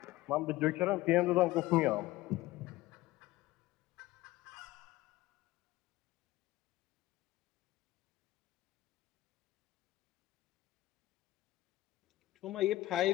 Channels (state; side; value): quieter; right; 17.5 dB